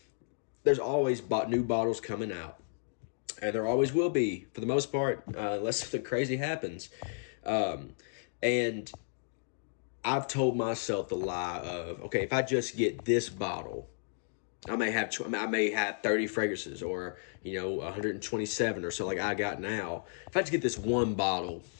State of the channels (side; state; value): right; silent; digital silence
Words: there's always new bottles coming out, and there always will be, for the most part, unless something crazy happens. And I've told myself the lie of, okay, if I just get this bottle, I may have 30 fragrances, or 127 or so like I got now. If I just get this one bottle,